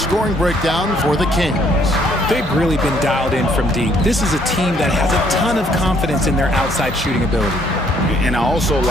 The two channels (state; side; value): normal; both; correlation 0.66